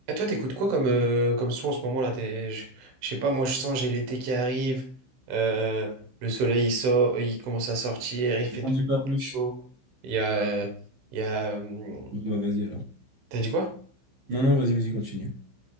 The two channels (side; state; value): left; late; 15 ms